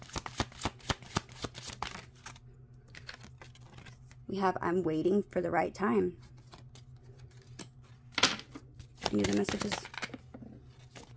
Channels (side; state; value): both; identical; correlation 1.00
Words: We have, I'm waiting for the right time. Any other messages?